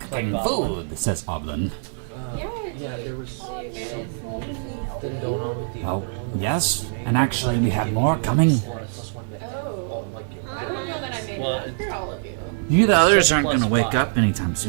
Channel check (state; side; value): silent; left; digital silence